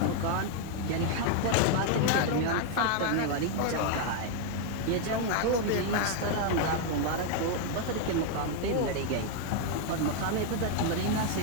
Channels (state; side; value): different; both; correlation 0.00